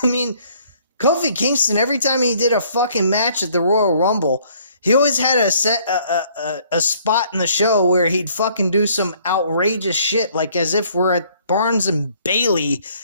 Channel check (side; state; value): both; inverted; correlation -0.61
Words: I mean, Kofi Kingston, every time he did a fucking match at the Royal Rumble, he always had a spot in the show where he'd fucking do some outrageous shit, like as if we're at Barnes and Bailey